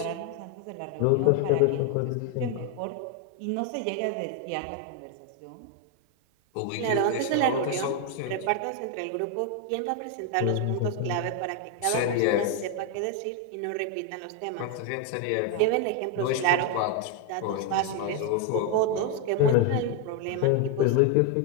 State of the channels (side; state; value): both; different; correlation 0.01